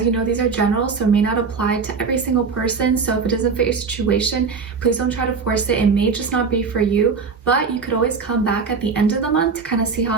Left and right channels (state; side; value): quieter; left; 5.1 dB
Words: you know, these are general, so it may not apply to every single person. So if it doesn't fit your situation, please don't try to force it. It may just not be for you, but you could always come back at the end of the month to kind of see how